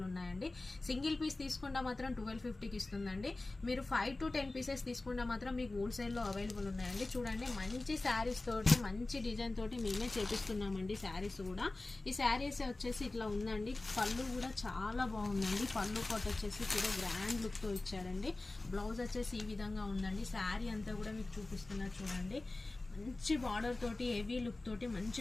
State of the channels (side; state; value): right; quieter; 3.0 dB